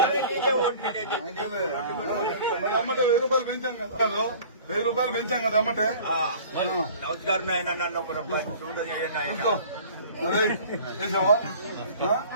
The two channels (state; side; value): inverted; both; correlation -0.46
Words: అమ్మటే 1000 రూపాయలు పెంచాం కదా 1000 రూపాయలు పెంచాం కదా అమ్మటే నమస్కారం ఆయన నన్ను ఒక రూపాయి చేసావా